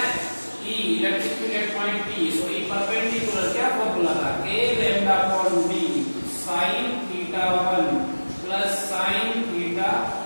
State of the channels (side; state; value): both; inverted; correlation -1.00